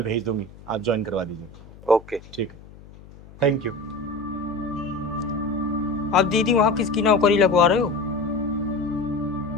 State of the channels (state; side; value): noise; left; hum, 20 dB below the sound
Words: भेज दूंगी, आप ज्वाइन करवा दीजिए। ओके ठीक है, थैंक यू। आप दीदी वहाँ किसकी नौकरी लगवा रहे हो?